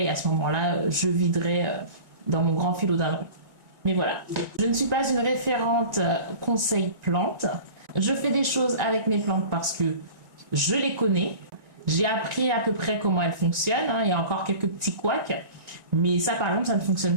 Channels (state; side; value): late; left; 1.9 ms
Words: à ce moment-là, je viderai dans mon grand philodendron. Mais voilà, je ne suis pas une référente conseil plantes. Je fais des choses avec mes plantes parce que je les connais. J'ai appris à peu près comment elles fonctionnent. Il y a encore quelques petits couacs. Mais ça, par exemple, ça ne fonctionne